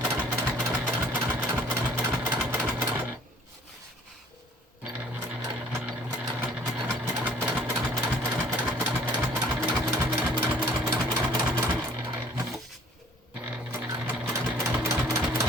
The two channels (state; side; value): normal; both; correlation 0.55